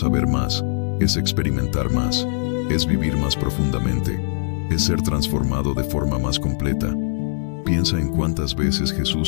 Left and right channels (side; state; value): right; silent; 64 dB below the other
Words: más, es experimentar más, es vivir más profundamente, es ser transformado de forma más completa. Piensa en cuántas veces